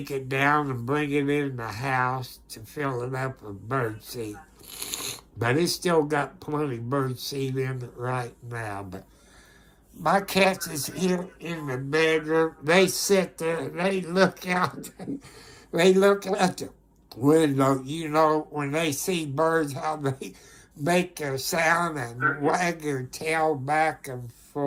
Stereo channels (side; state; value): both; identical; correlation 1.00